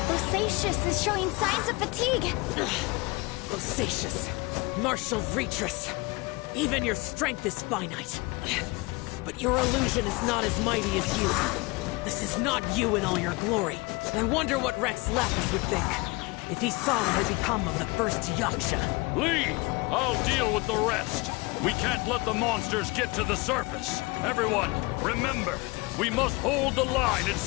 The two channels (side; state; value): right; quieter; 25.2 dB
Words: Bosacious is showing signs of fatigue. Bosacious. Martial Retris. Even your strength is finite. But your illusion is not as mighty as you. This is not you in all your glory. I wonder what Rex Lapis would think if he saw what had become of the first Yaksha. Leave! I'll deal with the rest. We can't let the monsters get to the surface. Everyone, remember, we must hold the line at